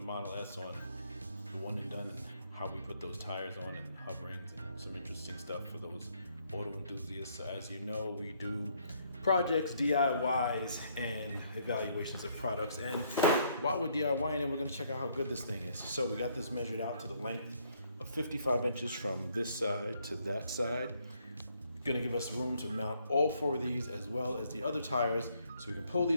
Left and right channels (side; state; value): both; inverted; correlation -0.69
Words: Model S on the One and Done and how we put those tires on and hub rings and some interesting stuff for those auto enthusiasts. So as you know, we do projects, DIYs, and evaluations of products. And while we're DIYing it, we're gonna check out how good this thing is. So we got this measured out to the length of 55 inches from this side to that side. Gonna give us room to mount all four of these as well as the other tires so we can pull